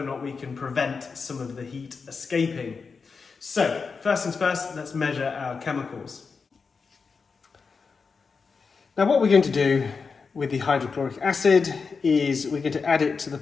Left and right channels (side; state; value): right; quieter; 5.1 dB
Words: or not we can prevent some of the heat escaping. So first things first, let's measure our chemicals. Now what we're going to do with the hydrochloric acid is we're going to add it to the